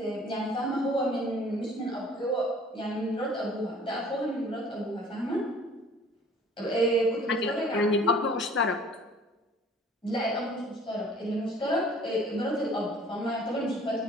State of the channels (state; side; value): normal; both; correlation 0.51